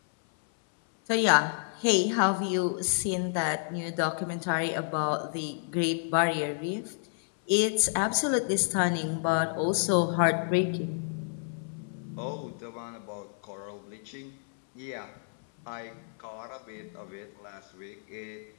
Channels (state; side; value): silent; right; 58 dB below the other